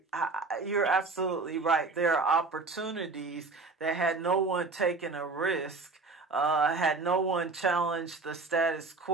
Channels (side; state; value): left; quieter; 3.9 dB